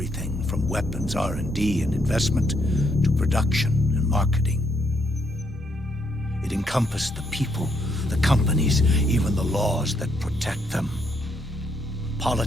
from weapons R&D and investment to production and marketing. It encompassed the people, the companies, even the laws that protect them.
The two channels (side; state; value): both; normal; correlation 0.75